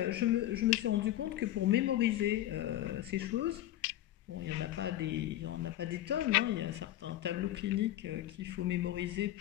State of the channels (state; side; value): quieter; right; 13.7 dB